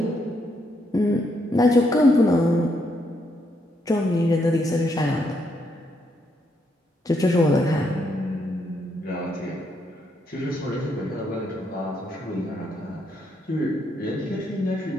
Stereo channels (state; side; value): normal; both; correlation 0.76